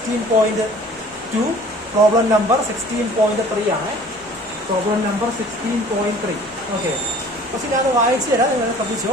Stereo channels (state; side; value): normal; both; correlation 0.49